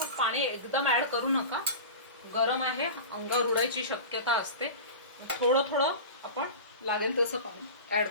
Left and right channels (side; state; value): both; inverted; correlation -0.31